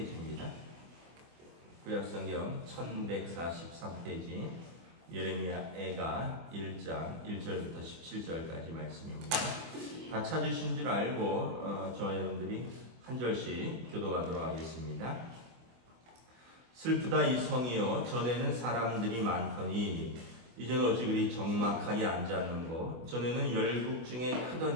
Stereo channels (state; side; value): late; left; 24 ms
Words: 구약성경 1143페이지 예레미야 애가 1장 1절부터 17절까지 말씀입니다. 다 찾으신 줄 알고 저와 여러분들이 한 절씩 교도하도록 하겠습니다. 슬프다 이 성이여, 전에는 사람들이 많더니 이제는 어찌 그리 적막하게 앉았는고. 전에는 열국 중에